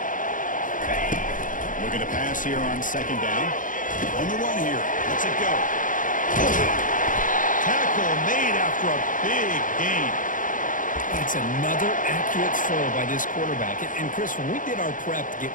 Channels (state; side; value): late; right; 0.38 ms